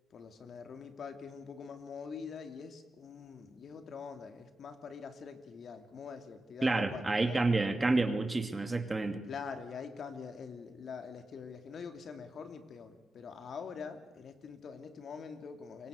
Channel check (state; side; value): normal; both; correlation 0.90